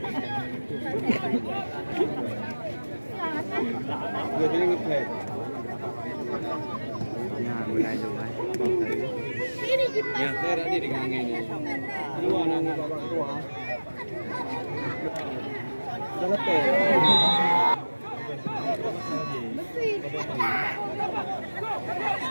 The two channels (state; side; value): inverted; both; correlation -1.00